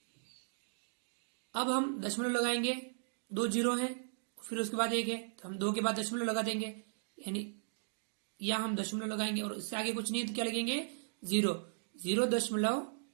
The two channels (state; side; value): silent; left; digital silence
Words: अब हम दशमलव लगाएंगे, 2 0 हैं फिर उसके बाद 1 है तो हम 2 के बाद दशमलव लगा देंगे यानी या हम दशमलव लगाएंगे और इससे आगे कुछ नहीं है तो क्या लगेंगे?